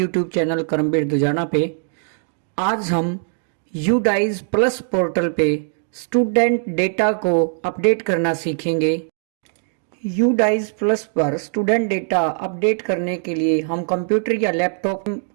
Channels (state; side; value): silent; left; 65 dB below the other